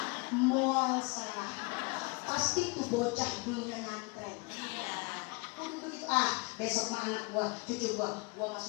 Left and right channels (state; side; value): quieter; right; 28.6 dB